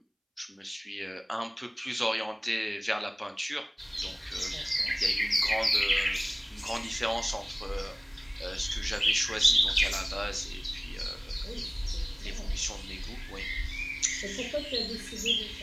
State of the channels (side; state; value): both; identical; correlation 1.00